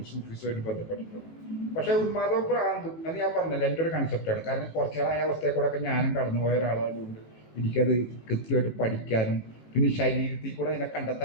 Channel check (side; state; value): right; late; 19 ms